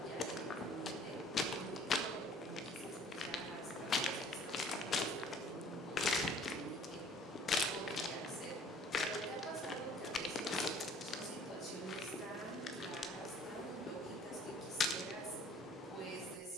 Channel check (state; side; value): normal; both; correlation 0.54